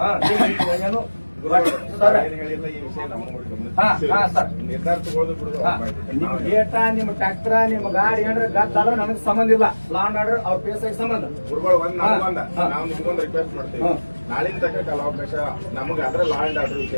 ಏನು ಸರ್. ನಿರ್ಧಾರ ನಿಮ್ ಗೇಟ ನಿಮ್ ಟ್ರ್ಯಾಕ್ಟರ್ ನಿಮ್ ಗಾಡಿ ಏನ್ರ ಗದ್ದಲ ನನಗ್ ಸಂಬಂಧ ಇಲ್ಲ. ಲಾ ಅಂಡ್ ಆರ್ಡರ್ ಅವ್ರ ಪೇಸಾಗಿ ಸಂಬಂಧ. ನಾವು ನಿಮ್ಗೊಂದು ರಿಕ್ವೆಸ್ಟ್ ಮಾಡ್ತೀವಿ, ನಾಳಿನ ತನಕ ಕಾಲಾವಕಾಶ ನಮಗೆ ಅದ್ರ ಲಾ ಅಂಡ್ ಆರ್ಡರ್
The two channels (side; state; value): both; inverted; correlation -1.00